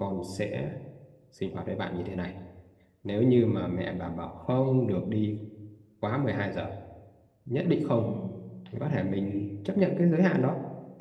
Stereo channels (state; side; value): identical; both; correlation 1.00